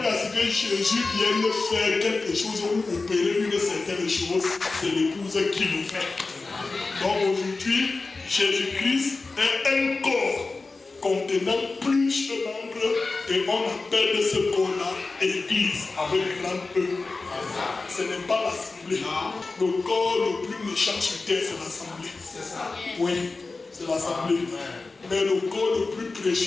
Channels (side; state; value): right; quieter; 3.7 dB